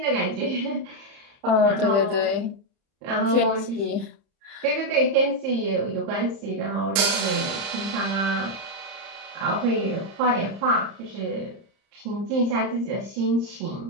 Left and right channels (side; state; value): left; late; 30 ms